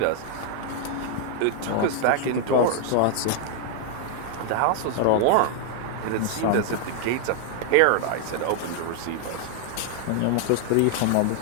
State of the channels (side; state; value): both; different; correlation 0.00